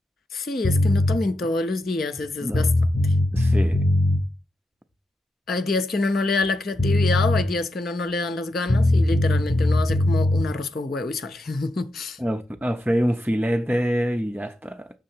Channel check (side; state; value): both; normal; correlation 0.86